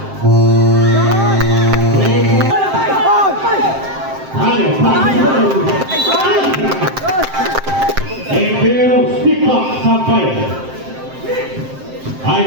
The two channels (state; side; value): late; left; 7.6 ms